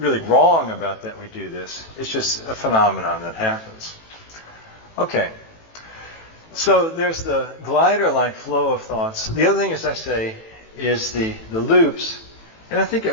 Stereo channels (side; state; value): right; late; 18 ms